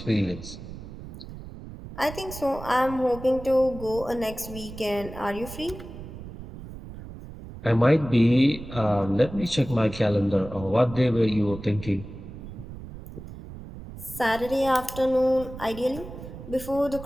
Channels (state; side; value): noise; right; rumble, 13 dB below the sound